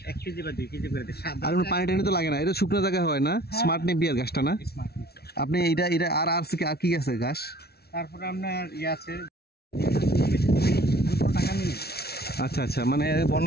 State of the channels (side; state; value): right; late; 0.46 ms